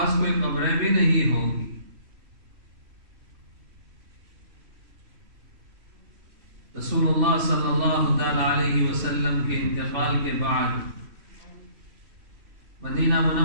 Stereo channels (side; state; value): left; late; 3.1 ms